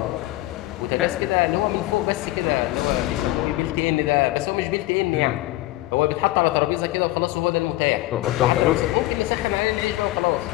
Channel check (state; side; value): quieter; right; 17.3 dB